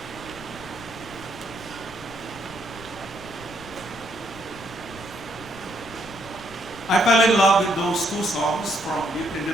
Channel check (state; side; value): noise; left; rumble, 17 dB below the sound